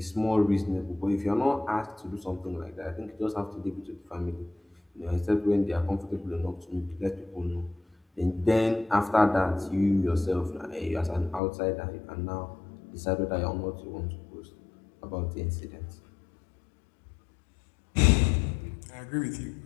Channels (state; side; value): drops out; right; at 11.4 s